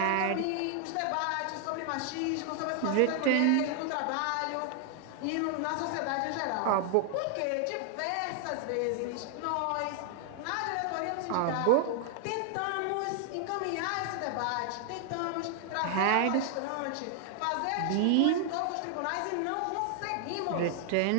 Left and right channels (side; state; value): both; different; correlation 0.00